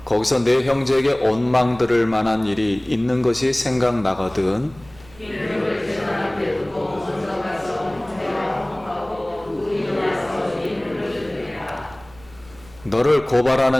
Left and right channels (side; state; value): right; noise; rumble, 24 dB below the sound